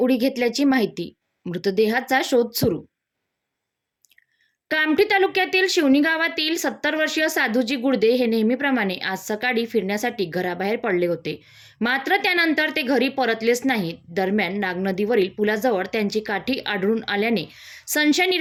घेतल्याची माहिती. मृतदेहाचा शोध सुरू. कामठी तालुक्यातील शिवणी गावातील 70 वर्षीय साधूजी गुडदे हे नेहमीप्रमाणे आज सकाळी फिरण्यासाठी घराबाहेर पडले होते. मात्र त्यानंतर ते घरी परतलेच नाहीत. दरम्यान नागनदीवरील पुलाजवळ त्यांची काठी आढळून आल्याने संशय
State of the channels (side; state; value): both; identical; correlation 1.00